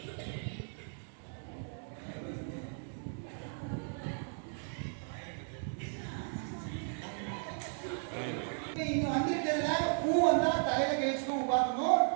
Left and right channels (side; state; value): left; silent; 54 dB below the other